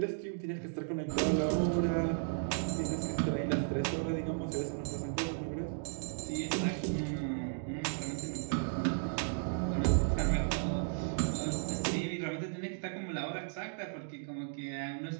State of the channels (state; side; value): silent; left; digital silence